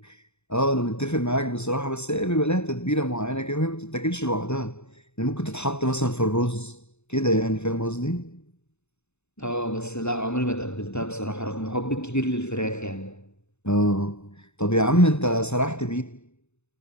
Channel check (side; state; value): right; late; 0.81 ms